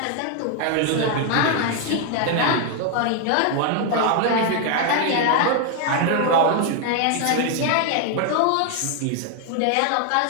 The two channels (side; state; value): both; different; correlation 0.00